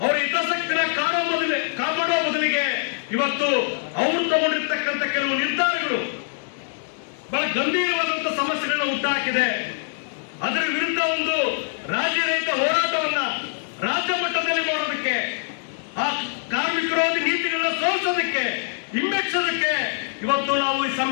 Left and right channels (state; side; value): silent; right; digital silence